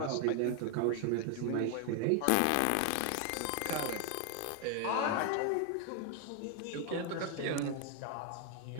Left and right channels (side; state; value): both; different; correlation 0.00